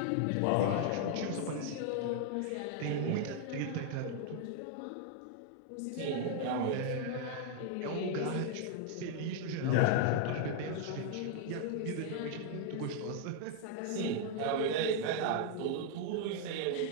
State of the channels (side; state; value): both; different; correlation 0.00